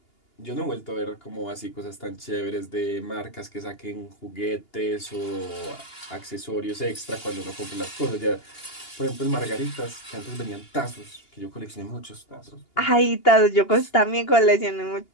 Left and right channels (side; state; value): right; late; 2.8 ms